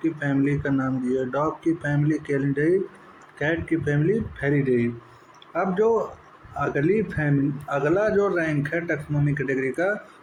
की फैमिली का नाम दिया, डॉग की फैमिली कैनिडेई, कैट की फैमिली फेलिडेई। अब जो अगला जो रैंक है टैक्सोनॉमी कैटेगरी का,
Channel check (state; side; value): identical; both; correlation 1.00